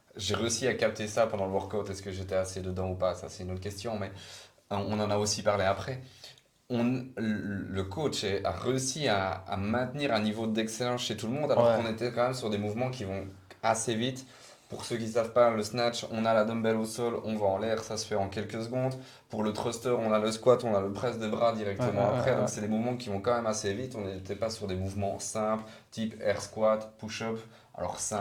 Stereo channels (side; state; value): both; identical; correlation 1.00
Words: j'ai réussi à capter ça pendant le workout, est-ce que j'étais assez dedans ou pas, ça c'est une autre question, mais on en a aussi parlé après. Le coach a réussi à maintenir un niveau d'excellence chez tout le monde alors Ouais. qu'on était quand même sur des mouvements qui vont assez vite. Pour ceux qui ne savent pas, le snatch, on a la dumbbell au sol, on va en l'air, ça se fait en quelques secondes. Pour le thruster, on a le squat, on a le press de bras directement après. Donc, c'est des mouvements qui vont quand même assez vite. On n'était pas sur des mouvements simples, type air squat, push-up. Alors,